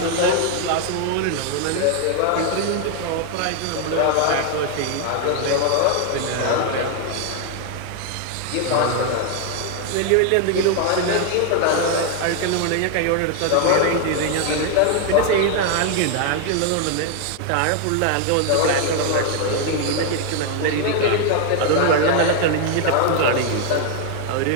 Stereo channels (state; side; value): different; both; correlation 0.00